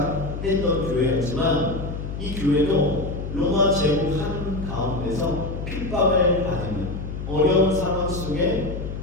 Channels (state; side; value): noise; left; hum, 7 dB below the sound